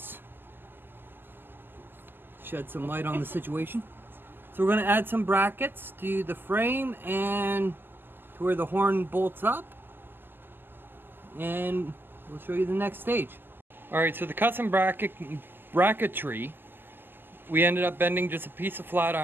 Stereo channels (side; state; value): left; late; 0.095 ms